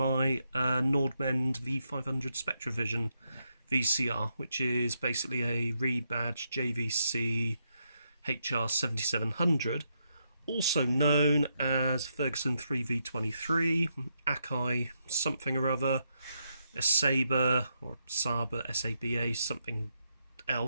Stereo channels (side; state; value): both; inverted; correlation -0.81